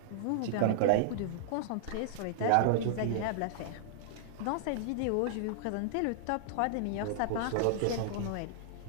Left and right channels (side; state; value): both; different; correlation -0.01